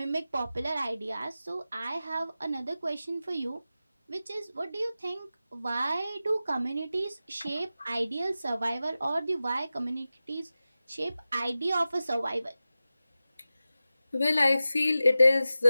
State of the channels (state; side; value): inverted; both; correlation -0.94